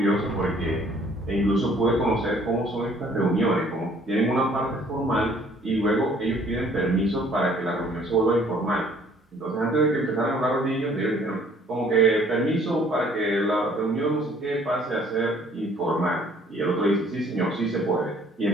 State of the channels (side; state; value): both; normal; correlation 0.58